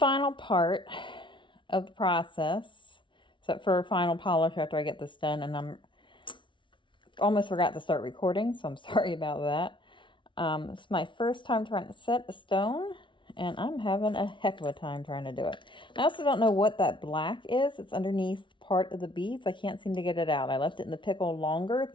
part of the process, except for final polish after I get this done, and I'm almost forgot to start recording, so I'm sorry about that. It's my first time trying to set a stone, and I'm having a heck of a time trying to do it. I also don't know what that black is. It's underneath part of the beads. I can't seem to get it out. I left it in the pickle longer,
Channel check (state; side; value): late; right; 0.24 ms